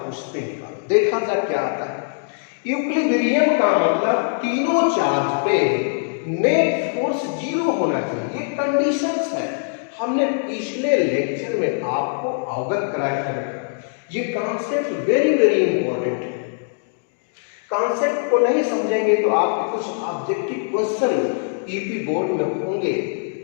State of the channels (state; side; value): silent; right; digital silence